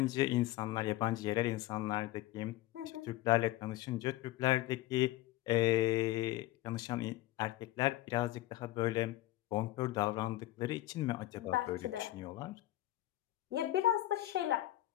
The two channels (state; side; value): quieter; right; 16.1 dB